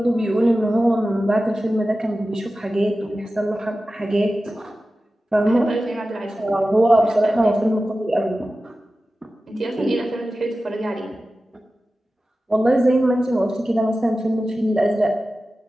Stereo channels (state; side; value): normal; both; correlation 0.94